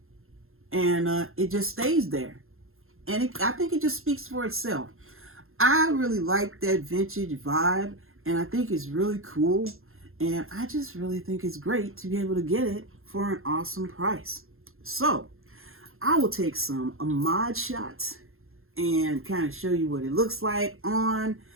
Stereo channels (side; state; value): left; late; 0.61 ms